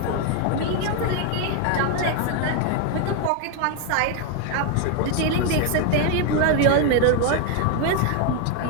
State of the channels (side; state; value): both; different; correlation 0.01